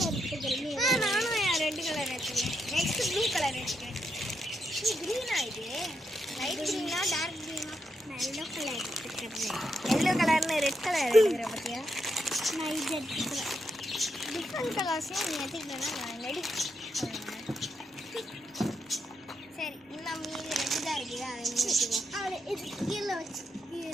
எடுத்துக்கிறேன். நானும் ரெட் கலர் எடுத்துக்கிறேன். நெக்ஸ்ட் ப்ளூ கலர் எடுத்துக்கிறேன். இது கிரீனா? இது லைட் கிரீனா டார்க் கிரீனா? நான் எல்லோ கலர் எடுத்துக்கிறேன். எல்லோ கலர்னு ரெட் கலர் எடுத்துக்கிறேன். பார்த்தியா, நான் இது எடுத்துக்கிறேன். டிஃப்ரெண்ட் கலர்ஸையும் நீ எடுத்துக்கிட்டேன்னா நான் ரெடி. சரி, இன்னும் மீதி ரெட்டு தான் இருக்குது, அதை நீ எடுத்துக்கோ. அவளை இது கீழே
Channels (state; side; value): normal; both; correlation 0.82